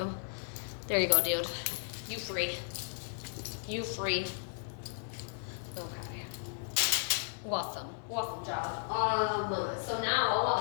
There you go, dude. You free. You free. Okay. Awesome. Awesome job. So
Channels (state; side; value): silent; right; 55 dB below the other